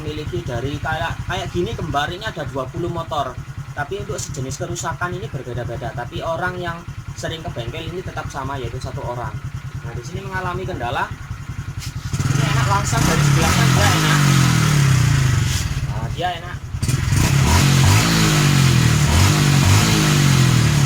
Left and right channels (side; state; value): both; identical; correlation 1.00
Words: dari kayak gini kembar ini ada 20 motor. Tapi untuk sejenis kerusakan ini berbeda-beda. Tapi orang yang sering ke bengkel ini tetap sama, yaitu satu orang. Nah, di sini mengalami kendala. Ini enak langsung dari sebelah kan dia enak. Nah, dia enak.